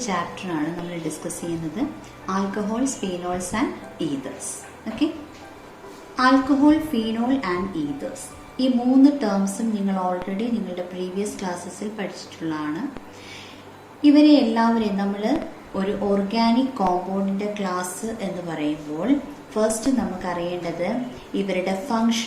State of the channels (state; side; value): identical; both; correlation 1.00